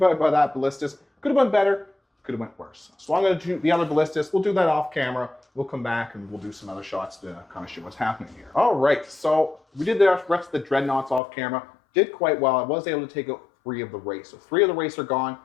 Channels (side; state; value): right; drops out; at 11.2 s